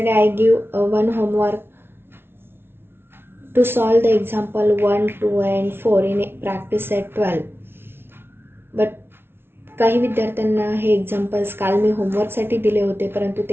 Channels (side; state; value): left; late; 0.11 ms